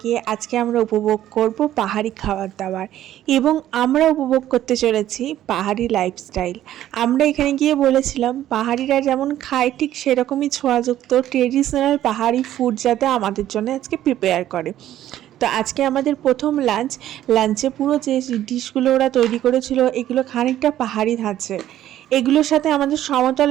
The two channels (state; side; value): quieter; left; 12.6 dB